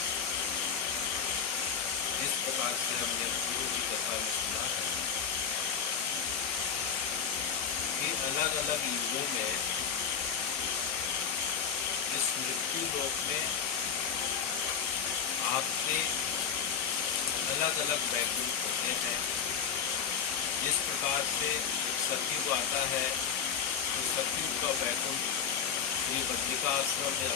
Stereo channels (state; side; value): quieter; right; 7.2 dB